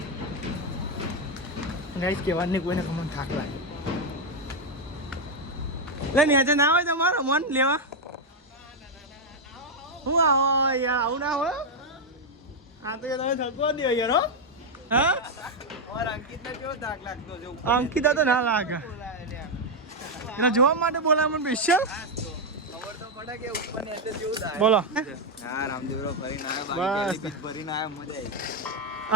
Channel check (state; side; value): normal; both; correlation 0.03